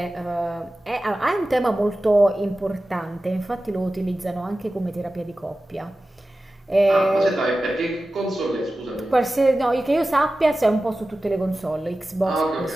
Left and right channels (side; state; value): both; normal; correlation 0.95